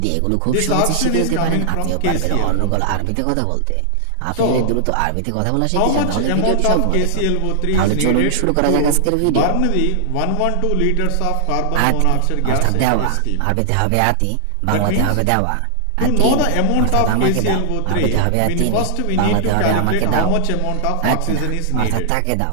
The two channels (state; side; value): different; both; correlation 0.00